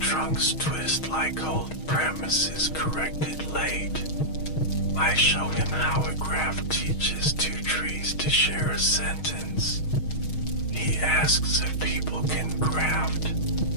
twist like old premises corrected late. I show him how a graph teaches two trees to share a sentence. He asks if people can graft.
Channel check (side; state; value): right; late; 6.4 ms